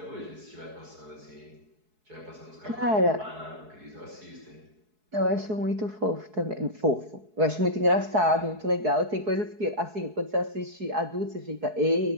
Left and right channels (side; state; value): left; late; 4.7 ms